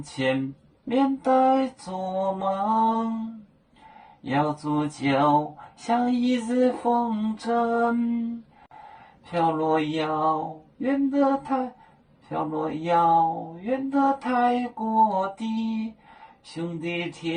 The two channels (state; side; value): identical; both; correlation 1.00